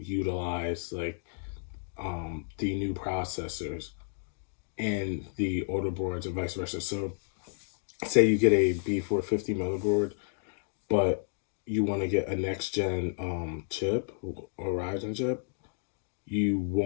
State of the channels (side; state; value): right; silent; digital silence